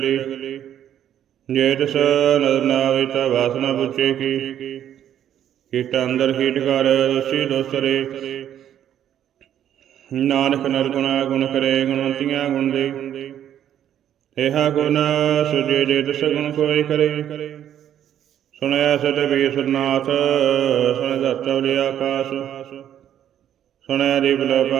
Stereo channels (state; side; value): quieter; left; 10.4 dB